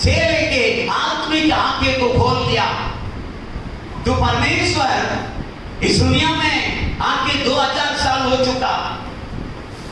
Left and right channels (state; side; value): identical; both; correlation 1.00